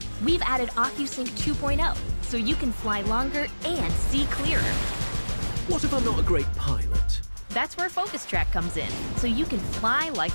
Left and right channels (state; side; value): inverted; both; correlation -1.00